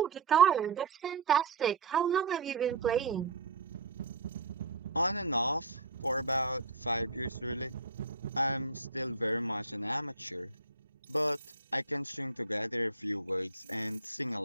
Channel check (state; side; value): quieter; left; 3.9 dB